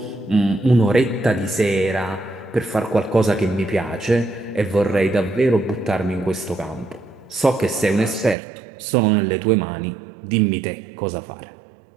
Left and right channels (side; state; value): left; drops out; at 8.3 s